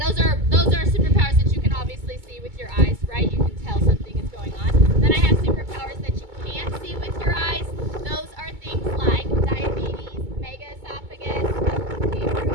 are superpowers that you can obviously see with your eyes, right? You can tell something is going on. Then I have superpowers that you can't see with your eyes. Those are things like diabetes, megaesophagus.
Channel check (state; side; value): late; left; 2.2 ms